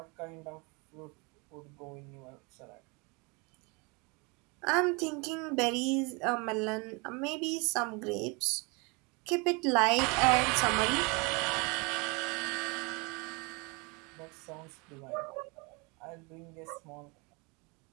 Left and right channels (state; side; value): quieter; left; 29.4 dB